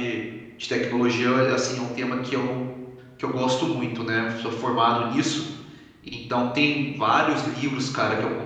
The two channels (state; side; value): identical; both; correlation 1.00